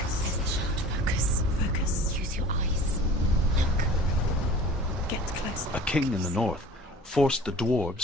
There's the shard. Focus. Focus. Use your eyes. Look. Get closer. A king in the north forced the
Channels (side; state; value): both; normal; correlation 0.43